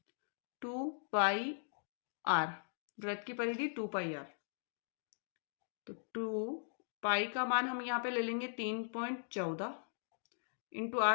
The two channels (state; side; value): silent; right; digital silence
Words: 2 पाई आर, वृत्त की परिधि 2 पाई आर। तो 2 पाई का मान हम यहाँ पे ले लेंगे 3.14 इंटू